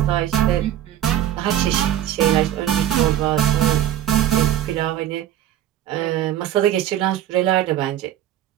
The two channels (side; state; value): left; quieter; 11.7 dB